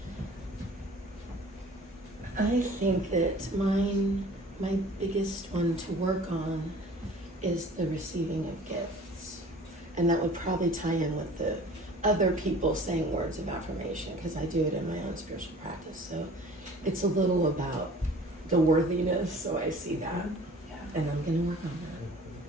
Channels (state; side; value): normal; both; correlation 0.47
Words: I think that my biggest one to work on is the receiving of gifts. And that would probably tie in with the other people saying words of affirmation, because I do it in my own spiritual practice. So it's a little about the worthiness, so I see that. Yeah. And I'm gonna work on